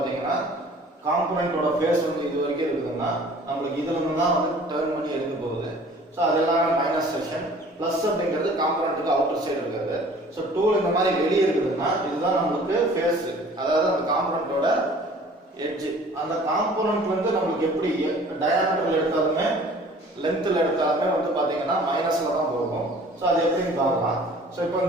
காம்பனண்டோட ஃபேஸ் வந்து இது வரைக்கும் இருக்குதுன்னா நம்மளுக்கு இதுல இருந்து தான் வந்து டர்ன் பண்ணி எடுக்க போகுது. ஸோ அதெல்லாம் மைனஸ் செக்ஷன். ப்ளஸ் அப்படிங்கிறது காம்பனண்ட்டுக்கு அவுட்டர் சைடு இருக்கிறது. ஸோ டூல் இந்த மாதிரி வெளியே இருக்குதுன்னா இதுதான் நம்மளுக்கு ஃபேஸ், அதாவது அந்த காம்பனண்டோட எட்ஜ். அந்த காம்பனண்ட் வந்து நம்மளுக்கு எப்படி டயாமீட்டர்ல எடுத்தாலுமே லென்த்தில் எடுத்தாலுமே வந்து பார்த்தீங்கன்னா மைனஸ்ல தான் போகும். ஸோ அது எப்படின்னு பார்க்கலாம். ஸோ இப்போ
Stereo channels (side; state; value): both; normal; correlation 0.50